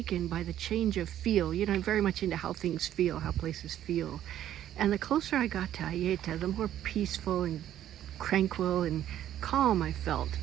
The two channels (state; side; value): quieter; left; 11.6 dB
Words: by the change of feel. I'm very much into how things feel, how places feel. And the closer I got to Aieta, the more peaceful and tranquil and calm I felt